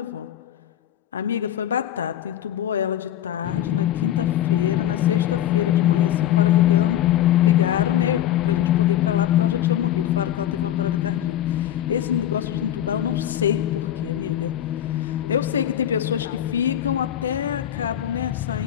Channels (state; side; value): quieter; right; 11.5 dB